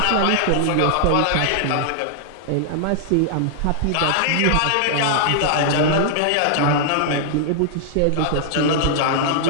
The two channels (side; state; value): both; different; correlation -0.01